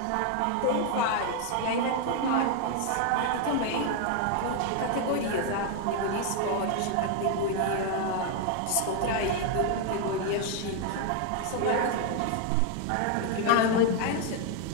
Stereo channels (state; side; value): different; both; correlation 0.01